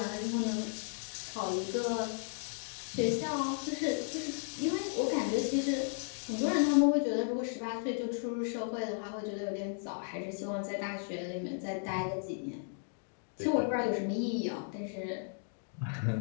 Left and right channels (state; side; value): silent; right; digital silence